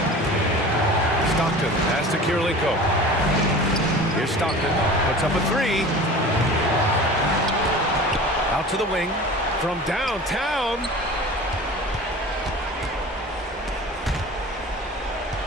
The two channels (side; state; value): both; normal; correlation 0.38